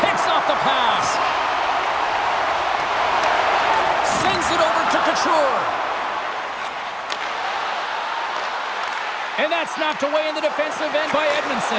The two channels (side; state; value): both; identical; correlation 1.00